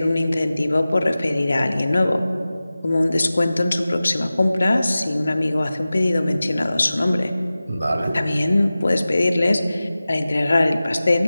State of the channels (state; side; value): inverted; both; correlation -0.96